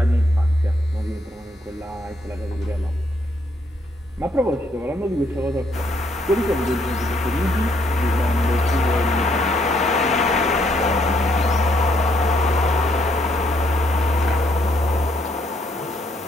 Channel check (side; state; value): both; normal; correlation 0.71